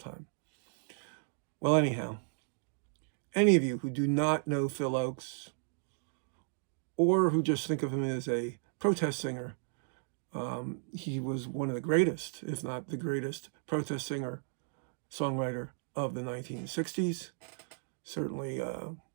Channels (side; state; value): left; silent; digital silence